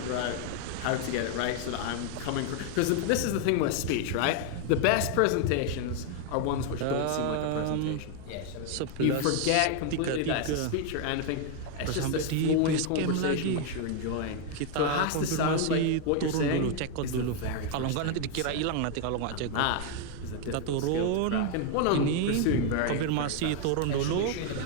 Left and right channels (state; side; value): different; both; correlation 0.00